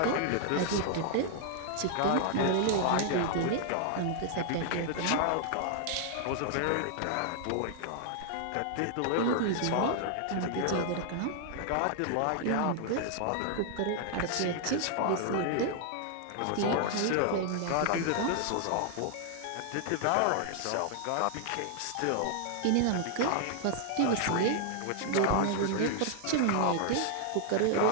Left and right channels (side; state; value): both; different; correlation 0.00